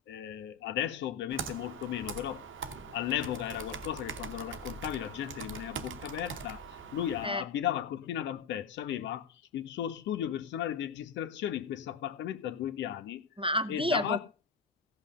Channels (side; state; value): right; quieter; 5.9 dB